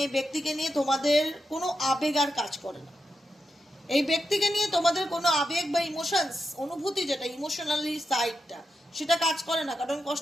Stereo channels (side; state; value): both; normal; correlation 0.87